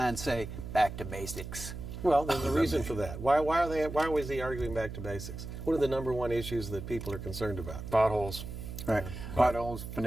say "Back to basics." Well, there's a reason for that. Why was he arguing back to basics? What are the number one issues that people are concerned about? Potholes. Right. Potholes,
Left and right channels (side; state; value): right; noise; hum, 9 dB below the sound